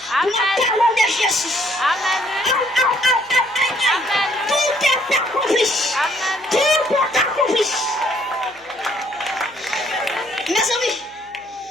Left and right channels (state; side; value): noise; left; hum, 30 dB below the sound